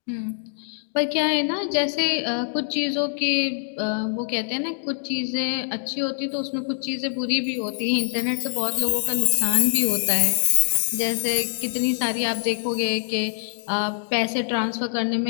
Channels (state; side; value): silent; right; digital silence